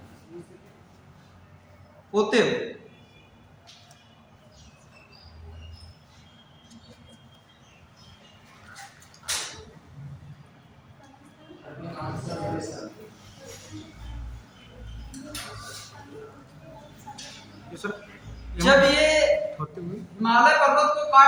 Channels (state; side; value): identical; both; correlation 1.00